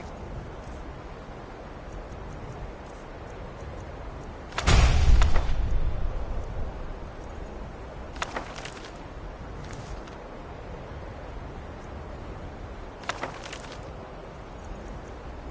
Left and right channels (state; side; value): identical; both; correlation 1.00